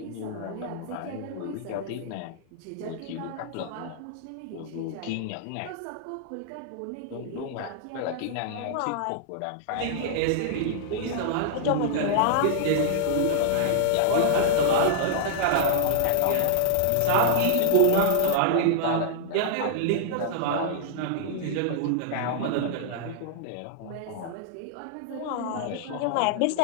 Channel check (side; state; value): both; different; correlation -0.01